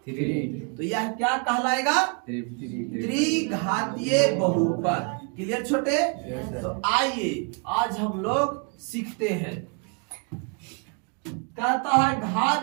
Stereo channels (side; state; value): left; quieter; 35.3 dB